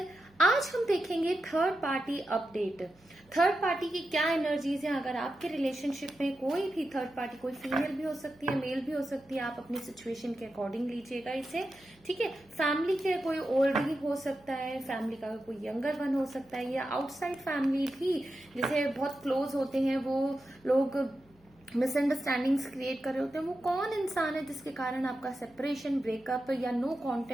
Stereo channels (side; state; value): right; noise; hum, 30 dB below the sound